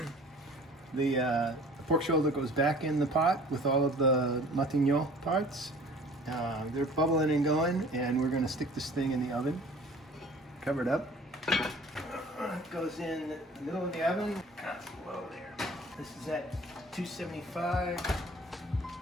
The pork shoulder goes back in the pot with all of the Matignon parts. They're bubbling and going, and we're going to stick this thing in the oven. Cover it up. It goes in the middle of the oven. Constant low there. This is at 275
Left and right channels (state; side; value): normal; both; correlation 0.48